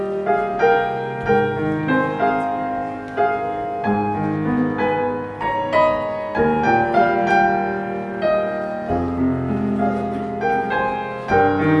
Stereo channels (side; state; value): both; identical; correlation 1.00